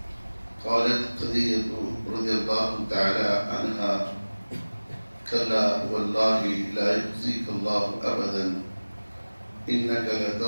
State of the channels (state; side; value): inverted; both; correlation -1.00